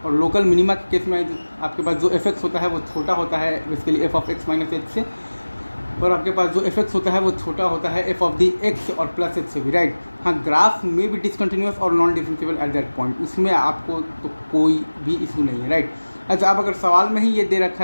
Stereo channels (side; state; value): both; inverted; correlation -1.00